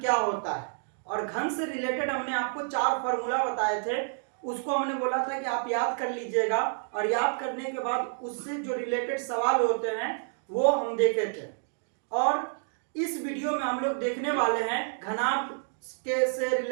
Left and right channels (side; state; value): left; silent; digital silence